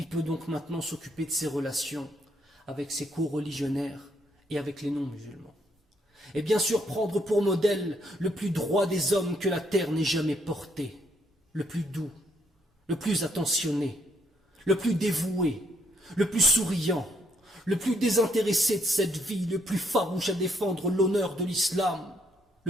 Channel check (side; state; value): both; normal; correlation 0.72